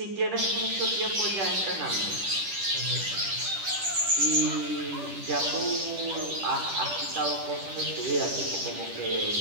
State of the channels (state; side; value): late; left; 10 ms